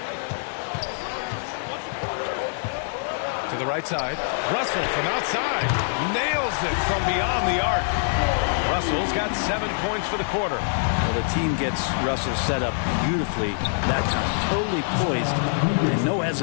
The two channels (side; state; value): right; silent; 62 dB below the other